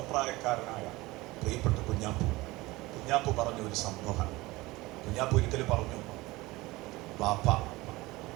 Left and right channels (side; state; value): left; quieter; 20.6 dB